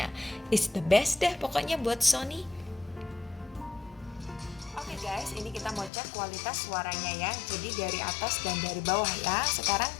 It's the best deh pokoknya buat Sony. Oke guys, ini kita mau cek kualitas suaranya ya. Jadi dari atas dan dari bawah ya. Sekarang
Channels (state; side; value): drops out; right; at 5.9 s